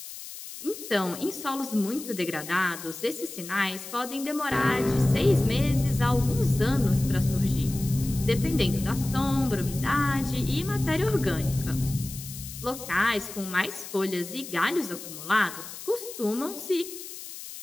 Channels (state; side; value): noise; left; hiss, 12 dB below the sound